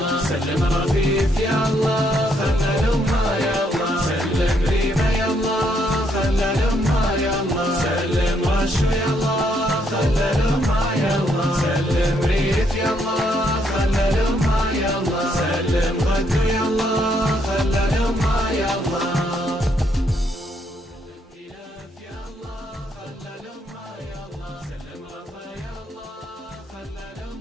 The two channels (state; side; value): normal; both; correlation 0.73